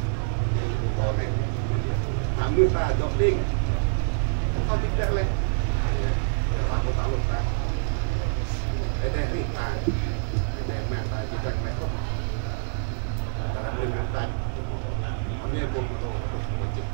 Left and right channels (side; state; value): left; silent; digital silence